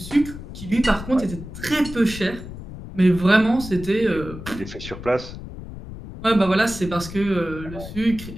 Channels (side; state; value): left; noise; rumble, 12 dB below the sound